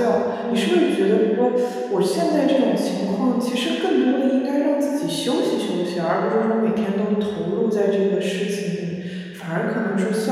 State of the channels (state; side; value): identical; both; correlation 1.00